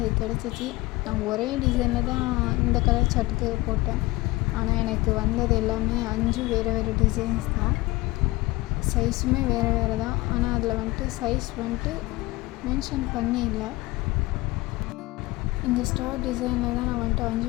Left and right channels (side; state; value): right; quieter; 20.5 dB